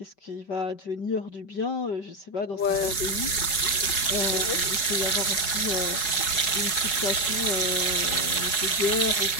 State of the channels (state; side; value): late; right; 5.3 ms